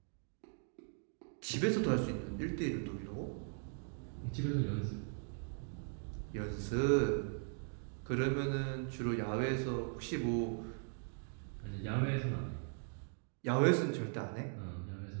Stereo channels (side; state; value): left; silent; 52 dB below the other